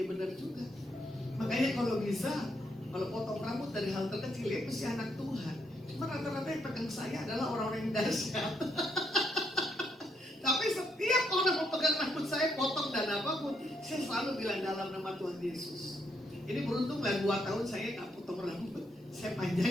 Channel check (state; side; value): normal; both; correlation 0.75